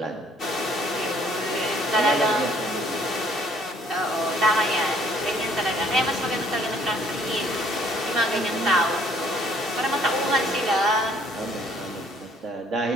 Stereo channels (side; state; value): both; normal; correlation 0.61